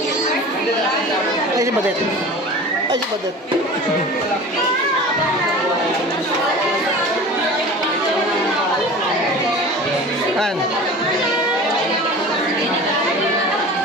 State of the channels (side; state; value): both; normal; correlation 0.38